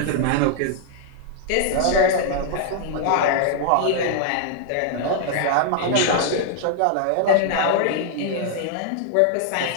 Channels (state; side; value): different; both; correlation 0.00